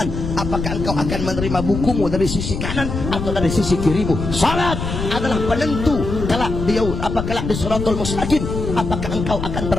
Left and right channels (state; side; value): noise; left; rumble, 5 dB below the sound